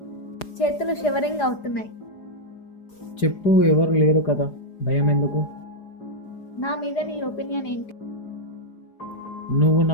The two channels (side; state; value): right; late; 4.9 ms